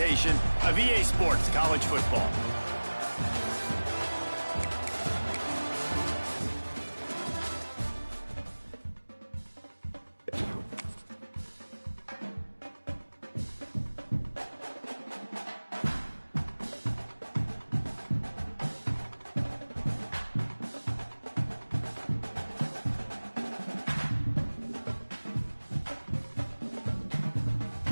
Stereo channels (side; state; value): both; inverted; correlation -1.00